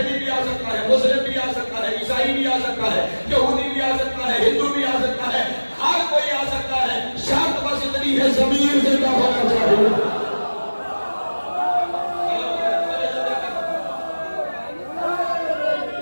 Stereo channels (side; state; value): both; inverted; correlation -1.00